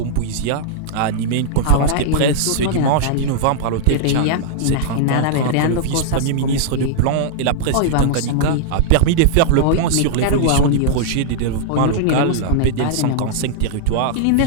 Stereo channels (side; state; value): both; different; correlation -0.01